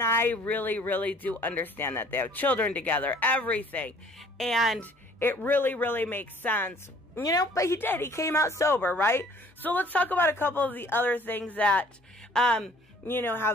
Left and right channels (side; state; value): both; normal; correlation 0.55